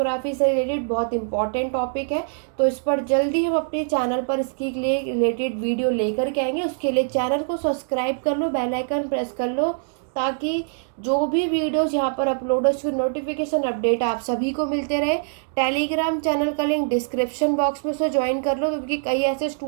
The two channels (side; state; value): left; silent; digital silence